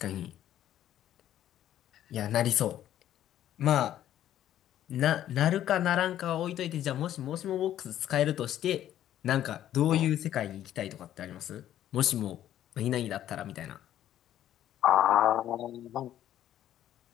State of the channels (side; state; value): right; quieter; 11.8 dB